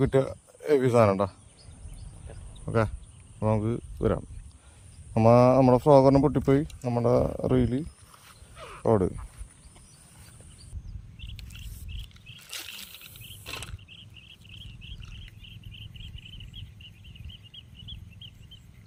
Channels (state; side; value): identical; both; correlation 1.00